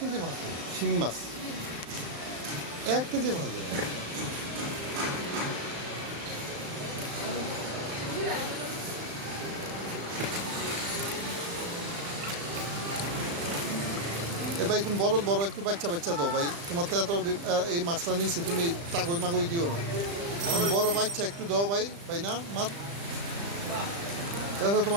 মাছ শিং মাছ 1 কেজি মাছ দেবে ভাই তুমি বড় বড় একটু বাচ্চা দাও ভাই তোমার তো এত এই মাছটা নিচ্ছি তুমি তাগই মাগই দিও না বড় বাচ্চা একটু দাও ভাই না মাছ এটা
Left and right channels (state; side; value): late; left; 35 ms